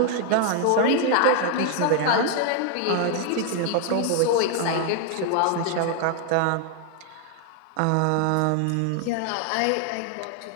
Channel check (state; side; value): different; both; correlation 0.00